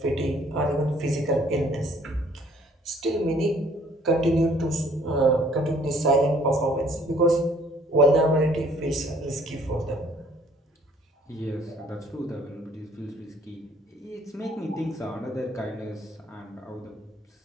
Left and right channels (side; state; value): both; normal; correlation 0.59